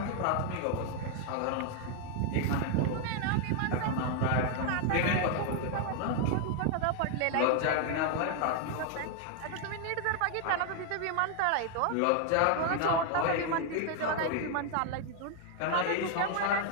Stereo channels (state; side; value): different; both; correlation 0.00